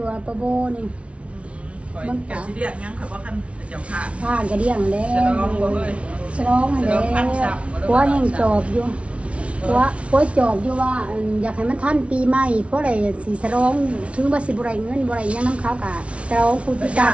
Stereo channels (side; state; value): left; late; 0.062 ms